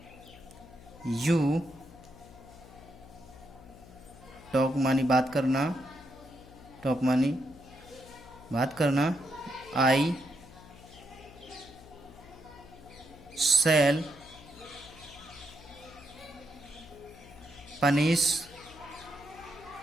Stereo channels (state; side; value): noise; left; hum, 19 dB below the sound